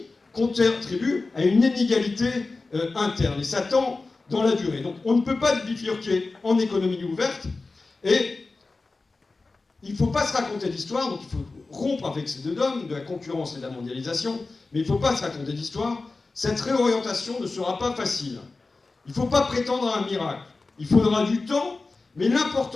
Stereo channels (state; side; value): quieter; right; 3.7 dB